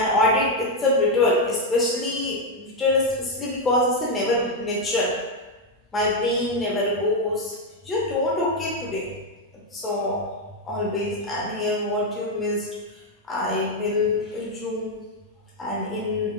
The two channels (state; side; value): normal; both; correlation 0.03